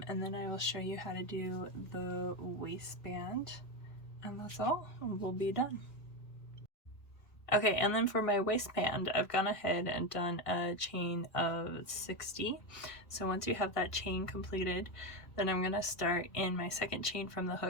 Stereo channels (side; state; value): right; late; 1.6 ms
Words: then I will show you how to do the waistband, and that's all, we'll be done. Okay, and then for my waistband, I've gone ahead and done a chain of 60. So once you have that chain completed, then I'm going to start in my second chain from the